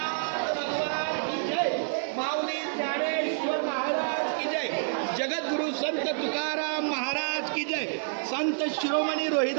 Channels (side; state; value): left; silent; digital silence